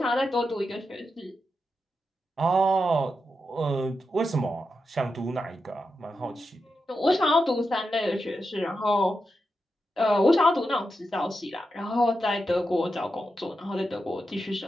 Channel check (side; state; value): both; normal; correlation 0.88